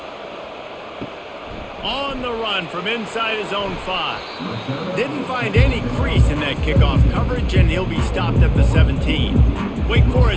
On the run from inside his own 5. Didn't find any crease in that kickoff coverage, and he'll be stopped at the 17. Wake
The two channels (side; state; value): both; identical; correlation 1.00